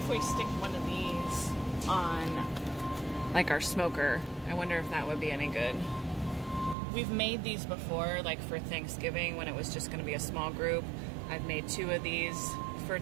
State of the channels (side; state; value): left; drops out; at 6.8 s